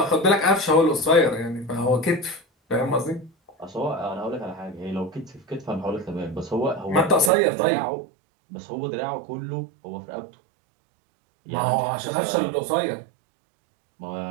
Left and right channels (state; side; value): drops out; left; at 7.3 s